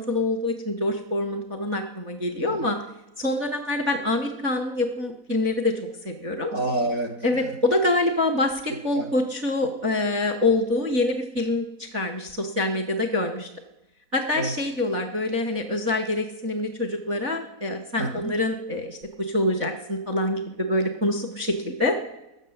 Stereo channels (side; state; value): left; late; 4.1 ms